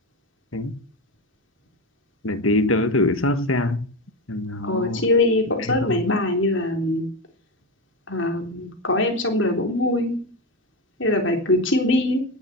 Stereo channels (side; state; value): both; normal; correlation 0.16